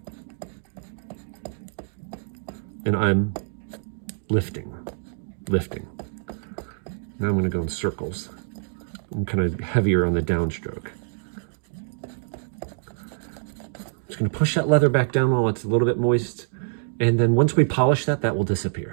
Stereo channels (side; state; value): left; silent; digital silence